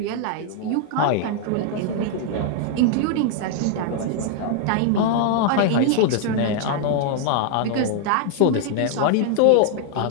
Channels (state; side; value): different; both; correlation 0.00